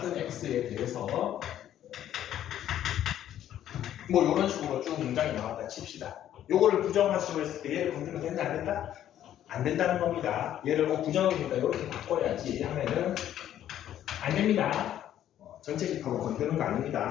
x에 대해서 뭐 이런 식으로 쭉 문장이 나왔다 칩시다. 요거를 부정하시고 했을 때 얘를 건드리면 된다 안 된다? 안 된다는 겁니다. 얘를 부정이니까 이렇게 바꿔야지 하면은 안 됩니다. 전체 집합을 건드는 거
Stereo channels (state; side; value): quieter; right; 11.4 dB